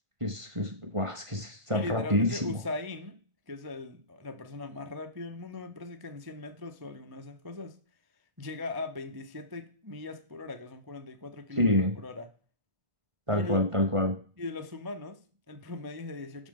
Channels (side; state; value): left; late; 1.5 ms